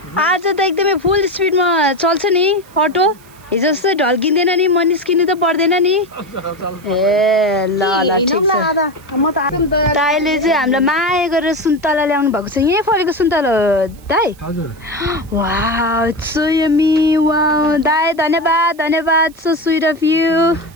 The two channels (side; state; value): right; noise; hiss, 27 dB below the sound